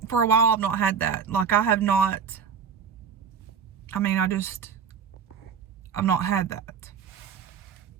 for a while I've not had that. Like, I have not. I mean, I've not had that.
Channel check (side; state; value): left; quieter; 6.5 dB